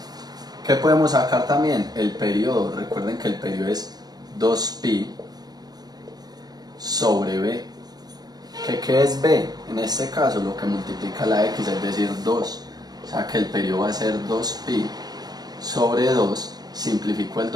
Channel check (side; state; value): left; late; 0.19 ms